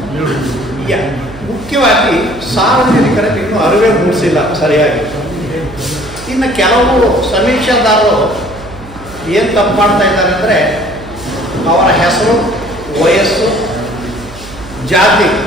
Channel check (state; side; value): noise; right; hum, 17 dB below the sound